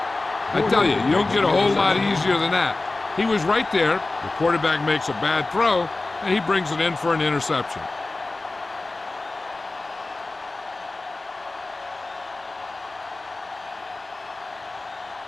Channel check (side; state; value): right; quieter; 3.2 dB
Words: I tell you, you don't get a whole lot easier than that. He was right there. The quarterback makes a bad throw, and he brings it in for an interception.